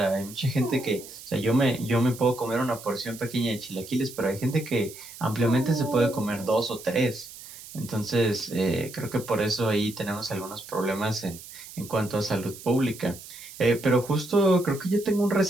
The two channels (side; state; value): right; noise; hiss, 15 dB below the sound